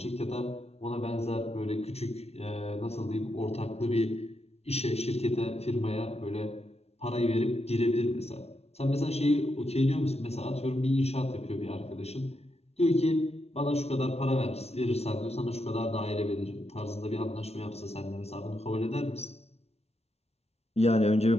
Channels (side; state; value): right; late; 0.30 ms